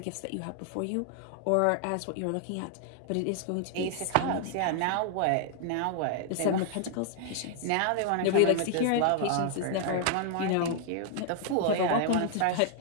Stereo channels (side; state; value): both; different; correlation 0.00